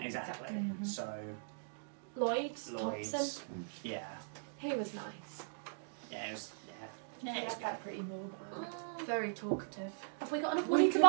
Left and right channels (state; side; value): silent; left; digital silence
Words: Exactly. Mhm. So, Lloyd's Lloyd's. Thompson. Yeah. He was nice. Yeah, it was. Yeah, Yeah, it's it's got pretty mobile. Very talkative. Have we got enough We money to could